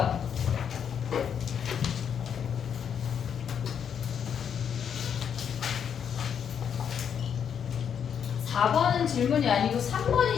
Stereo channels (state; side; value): quieter; right; 7.9 dB